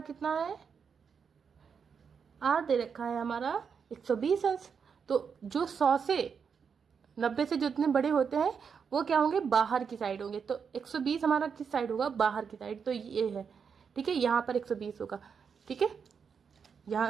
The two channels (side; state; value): left; quieter; 6.4 dB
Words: कितना है, R दे रखा है हमारा 120 अंश। तो जो 100 से 90 से जितने बड़े होते हैं वो क्या होंगे, बाहर की साइड होंगे। तो 120 हमारा किस साइड होगा, बाहर की साइड, तो ये है। ठीक है, यहाँ पर 120 होगा। ठीक है, यहाँ